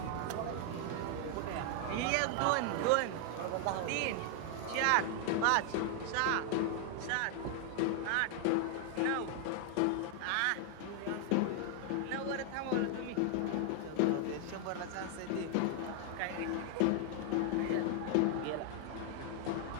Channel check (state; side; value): different; both; correlation 0.00